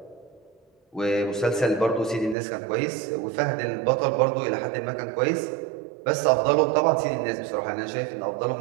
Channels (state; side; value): drops out; left; at 2.4 s